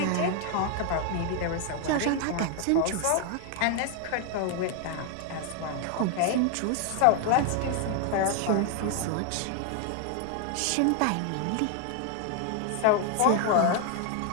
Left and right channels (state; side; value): different; both; correlation 0.00